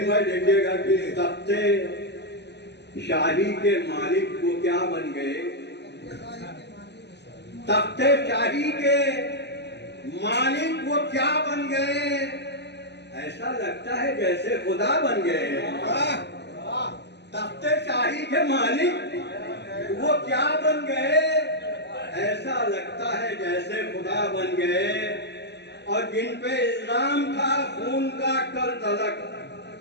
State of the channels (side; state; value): right; late; 0.50 ms